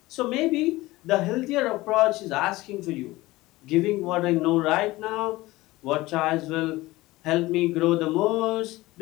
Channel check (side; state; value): right; quieter; 19.2 dB